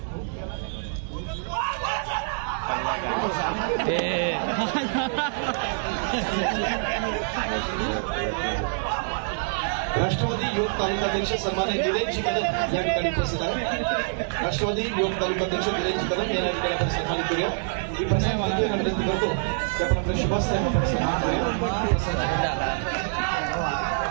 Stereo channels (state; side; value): silent; left; digital silence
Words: राष्ट्रवादी युवक तालुकाध्यक्ष सन्मान्य दिलेशजी कदम या ठिकाणी उपस्थित आहेत. राष्ट्रवादी युवक तालुकाध्यक्ष दिलेशजी कदम यांना या ठिकाणी आपण सन्मानित करूया. मी प्रसाद मालके विनंती करतो की आपण आपल्या शुभास्ते आपण सन्मान करूया.